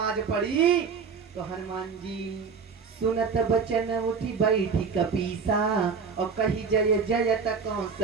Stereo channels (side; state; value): left; quieter; 5.6 dB